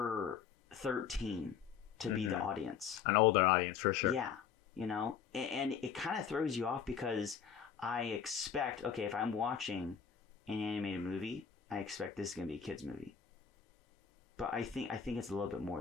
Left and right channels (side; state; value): right; quieter; 7.3 dB